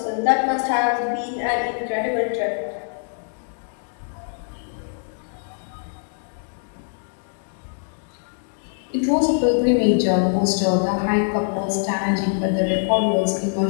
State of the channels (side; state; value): right; silent; digital silence